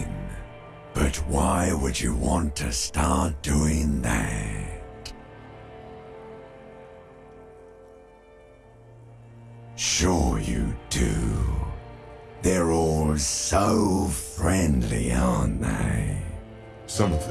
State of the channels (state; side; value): identical; both; correlation 1.00